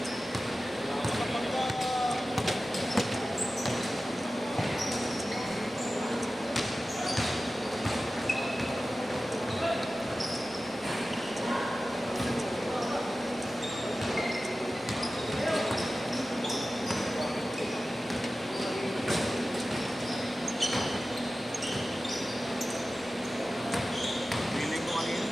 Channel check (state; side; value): normal; both; correlation 0.95